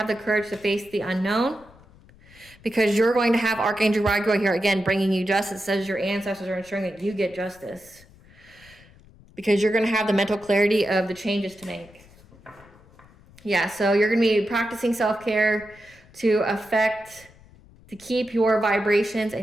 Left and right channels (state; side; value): noise; left; rumble, 25 dB below the sound